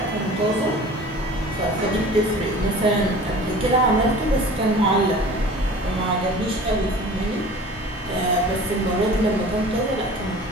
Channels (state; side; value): normal; both; correlation 0.42